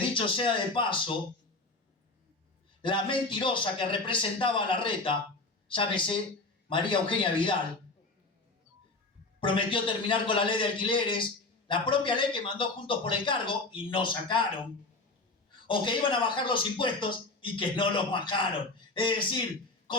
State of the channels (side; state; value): right; quieter; 3.3 dB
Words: sea de paso, la mentirosa que representaba a Larreta, llámese María Eugenia Vidal, prometió terminar con la ley de alquileres, la propia ley que mandó Juntos por el Cargo y no sacaron, o que iban a bajar los impuestos y que no los bajaron. Es decir,